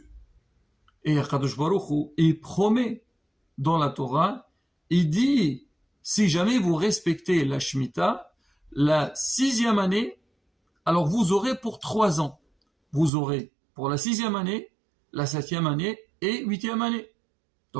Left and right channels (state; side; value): drops out; left; at 13.1 s